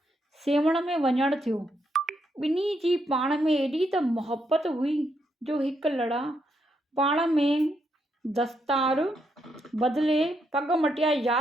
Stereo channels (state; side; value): normal; both; correlation 0.78